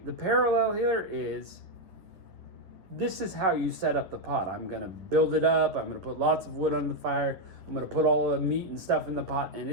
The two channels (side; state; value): left; late; 10 ms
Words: parallel here is, this is how you set up the pot. I'm going to build it up. I'm going to put lots of wood on the fire. I'm going to put all the meat and stuff in the pot, and